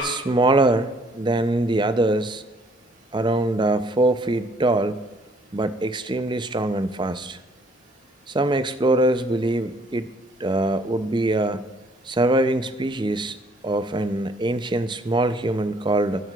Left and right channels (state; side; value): normal; both; correlation 0.62